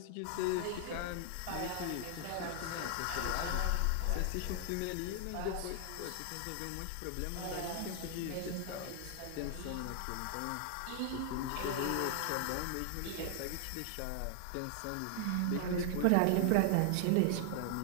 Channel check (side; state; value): both; different; correlation 0.00